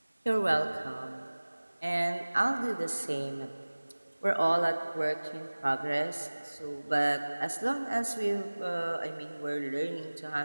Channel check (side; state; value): both; inverted; correlation -1.00